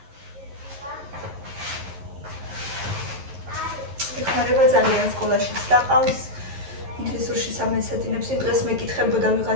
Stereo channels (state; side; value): late; left; 11 ms